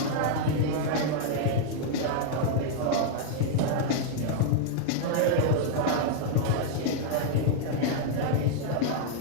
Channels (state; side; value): different; both; correlation -0.01